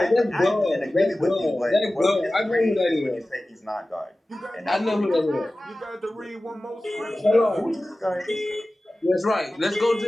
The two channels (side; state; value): both; normal; correlation 0.96